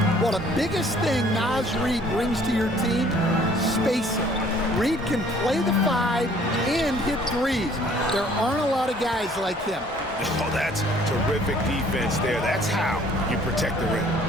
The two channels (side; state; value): both; normal; correlation 0.57